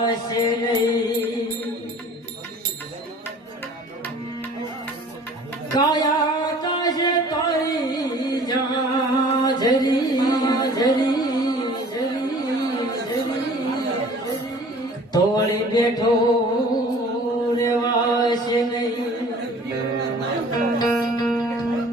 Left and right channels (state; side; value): normal; both; correlation 0.48